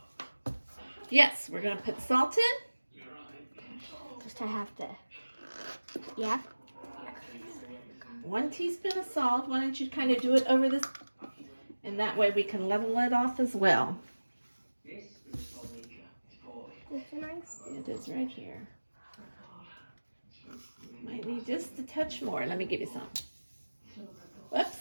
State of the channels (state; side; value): inverted; both; correlation -1.00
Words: Yes, we're gonna put salt in. Just to have to. Yeah. 1 teaspoon of salt. Why don't you kind of do it over this, and that way we can level it off as well. It's nice. It is right here. Might need just a touch more. Let me give you some.